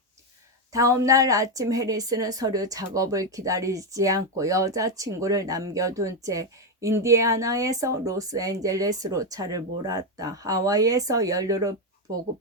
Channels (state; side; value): normal; both; correlation 0.07